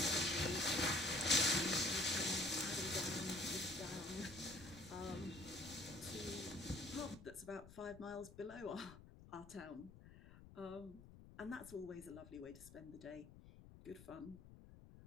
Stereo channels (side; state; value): left; noise; rumble, 17 dB below the sound